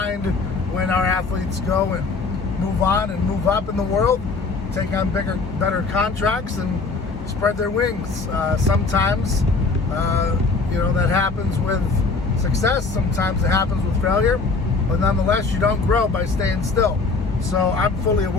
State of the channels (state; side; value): quieter; right; 4.0 dB